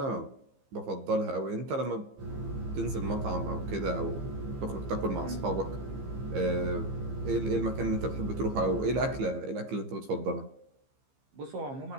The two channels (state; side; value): late; left; 15 ms